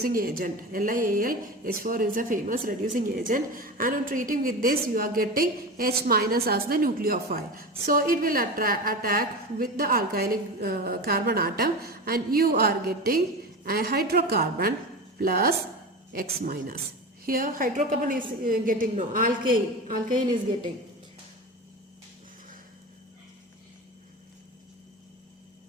agent. LiAlH4 is a famous reducing agent, and on treating with this you are getting H minus as the nucleophile. So it will attack with the alkylic carbon atom, and you are getting a hydrocarbon plus X minus. Here hydrocarbon is getting no, alkane is getting.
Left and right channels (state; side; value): normal; both; correlation 0.26